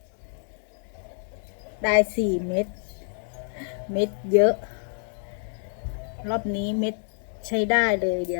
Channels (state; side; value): silent; right; 60 dB below the other